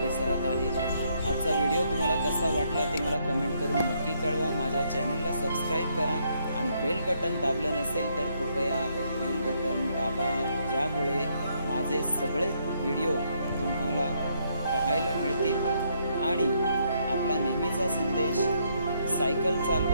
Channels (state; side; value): inverted; both; correlation -0.73